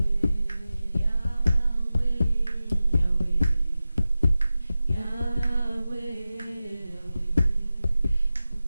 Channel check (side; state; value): both; inverted; correlation -0.94